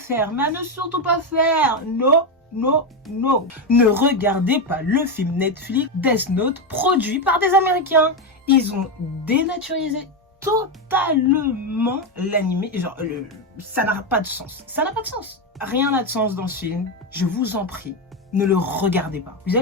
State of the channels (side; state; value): both; normal; correlation 0.10